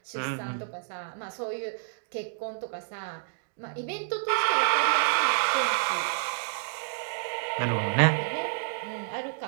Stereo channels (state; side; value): silent; left; digital silence